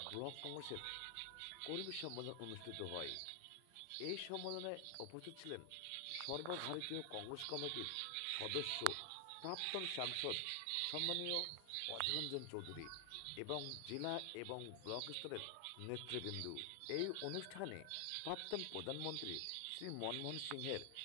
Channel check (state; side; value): different; both; correlation 0.00